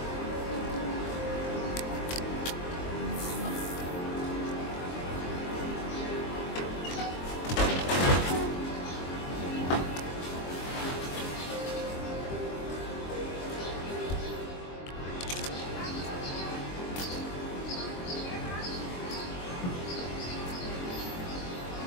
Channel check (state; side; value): late; right; 23 ms